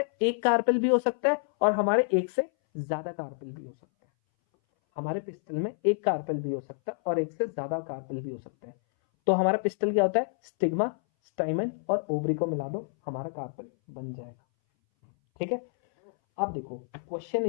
एक कार्पेल भी हो सकता है और हमारे एक से ज्यादा कार्पेल भी हो सकता है। हमारे पिस्टल में एक कार्पेल भी हो सकता है और एक से ज्यादा कार्पेल भी हो सकता है। तो हमारा पिस्टल क्या होता है, स्टिग्मा, स्टाइमन और ओवरी को मिला दो, हमारा कार्पेल बन जाएगा। ठीक है, अब देखो क्वेश्चन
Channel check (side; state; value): right; silent; 59 dB below the other